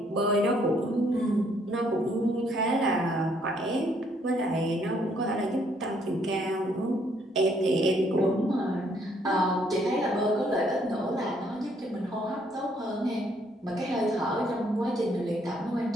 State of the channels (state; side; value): normal; both; correlation 0.68